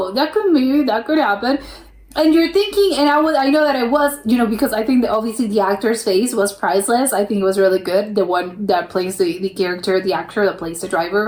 that could happen. And you're thinking, and I know that I was, because I think that obviously the actor's face was priceless. I think it was really good. The one that plays the character, the actor that plays the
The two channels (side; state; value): both; identical; correlation 1.00